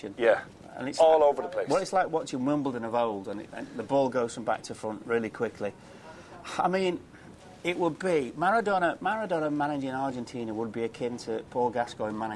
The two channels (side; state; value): both; identical; correlation 1.00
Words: Yeah, and it's all over the place. Well, it's like watching Wimbledon of old, and the ball goes from back to front really quickly. I mean, it would be Maradona managing Argentina would be akin to Paul Gascoigne